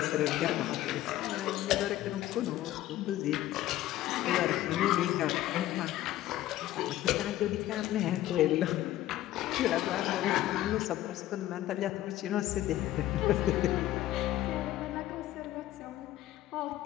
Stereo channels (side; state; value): right; quieter; 14.4 dB